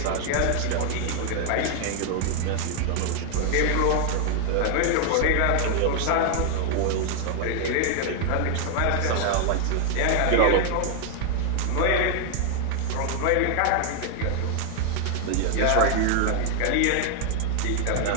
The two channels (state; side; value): different; both; correlation 0.00